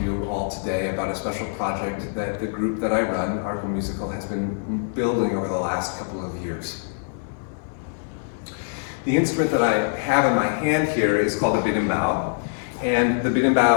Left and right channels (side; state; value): right; silent; digital silence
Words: all today about a special project that the group that I run, Arcomusical, has been building over the last couple of years. The instrument that I have in my hand here is called a berimbau, and the